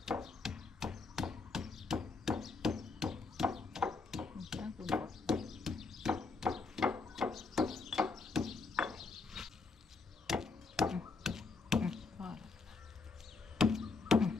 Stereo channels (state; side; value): quieter; right; 4.1 dB